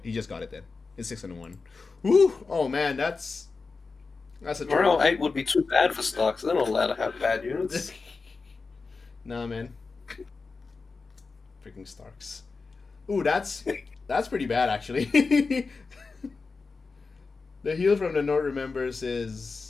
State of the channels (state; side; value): quieter; right; 4.3 dB